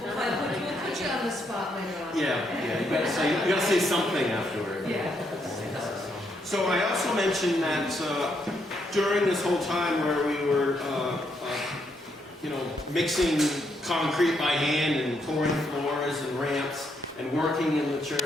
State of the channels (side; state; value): both; normal; correlation 0.76